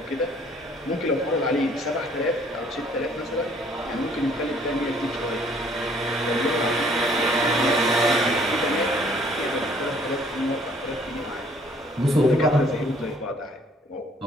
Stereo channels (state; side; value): normal; both; correlation 0.60